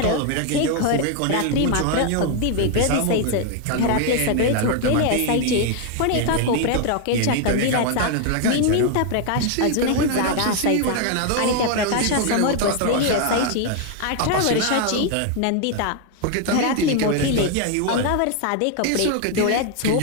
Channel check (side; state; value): both; different; correlation 0.00